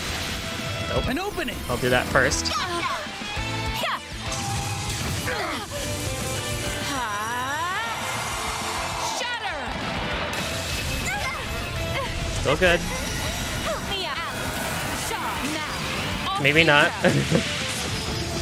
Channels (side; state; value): both; identical; correlation 1.00